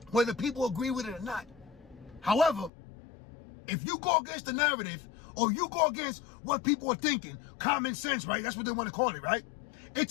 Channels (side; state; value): right; drops out; at 2.7 s